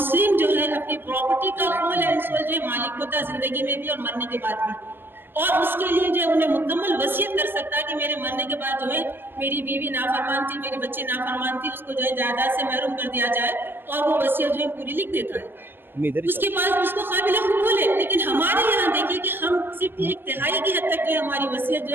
جو ہے اپنی پراپرٹی کا ہول اینڈ سول جو ہے مالک ہوتا ہے زندگی میں بھی اور مرنے کے بعد بھی, اور اس کے لیے جو ہے انہیں مکمل وصیت کر سکتا ہے کہ میرے مرنے کے بعد جو ہے میری بیوی نافرمان تھی, میرے بچے نافرمان تھی, اس کو جو ہے جائیداد سے محروم کر دیا جائے, اور وہ وصیت جو ہے پوری لکھ دیتا ہے. اس کے پاس اس کو قابل قبول ہے. لیکن ہمارے یہاں دیکھیں کہ ہم صرف 1/3 کی حد تک جو ہے ہماری وصیت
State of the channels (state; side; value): late; left; 0.10 ms